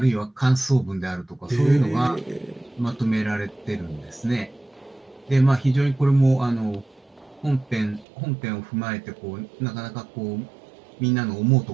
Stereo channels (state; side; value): drops out; left; at 8.1 s